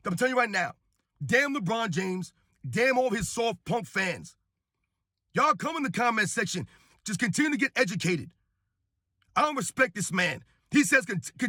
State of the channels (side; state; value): both; identical; correlation 1.00